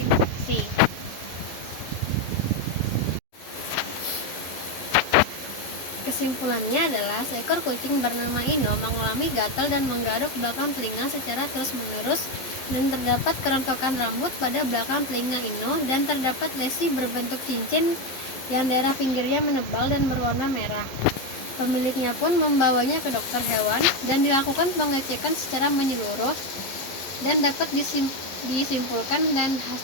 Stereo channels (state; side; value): late; right; 11 ms